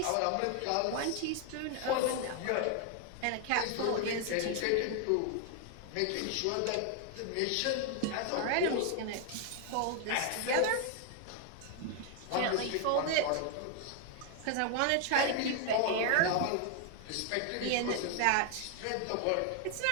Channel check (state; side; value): different; both; correlation 0.00